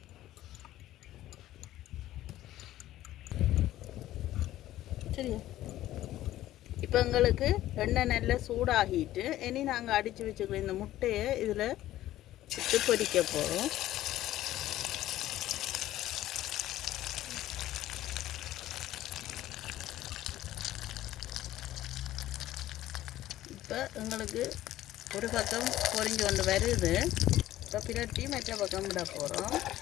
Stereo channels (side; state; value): right; quieter; 14.3 dB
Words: சரியா? இப்போ எங்களுக்கு எண்ணெய் நல்லா சூடாகிட்டு இனி நாங்கள் அடித்து வச்சுக்கிற இந்த முட்டையை இதில் விட்டு பொரிக்க போகிறோம். இப்போ எங்களுக்கு ஒரு பக்கம் பொரிஞ்சு கொண்டு வருது. இப்போ பிரட்டி மற்ற பக்கம் விட போகிறோம்.